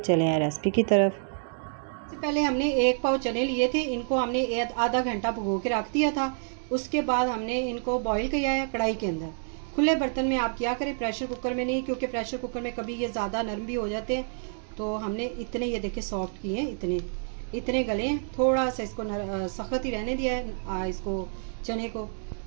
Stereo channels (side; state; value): left; silent; digital silence